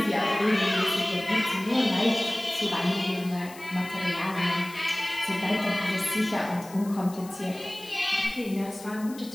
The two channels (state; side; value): noise; left; hiss, 19 dB below the sound